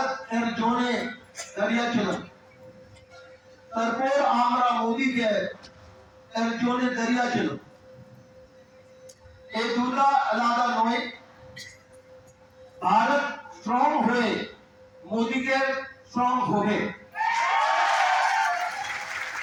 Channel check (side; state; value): both; identical; correlation 1.00